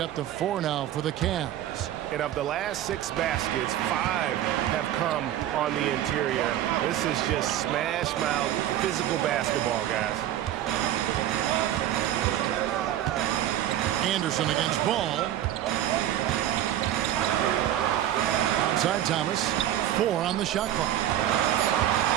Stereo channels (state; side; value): quieter; left; 12.1 dB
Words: to 4 now for the Cavs. And of the last 6 baskets, 5 have come on the interior. This is just smash-mouth physical basketball, guys. Anderson against Ball. Outside Thomas. 4 on the shot clock.